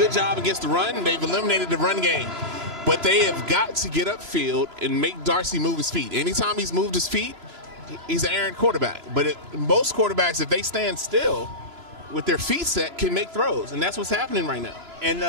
job against the run. They've eliminated the run game. But they have got to get upfield and make Darcy move his feet. Anytime he's moved his feet, he's an errant quarterback. But most quarterbacks, if they stand still with their feet set, can make throws. And that's what's happening right now. And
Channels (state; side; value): late; left; 3.0 ms